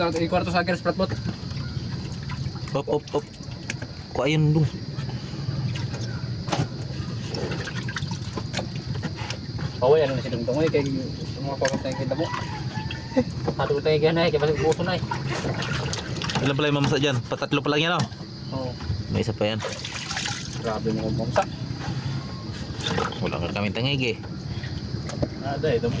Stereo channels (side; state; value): both; identical; correlation 1.00